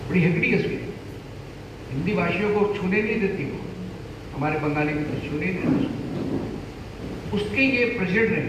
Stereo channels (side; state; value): both; identical; correlation 1.00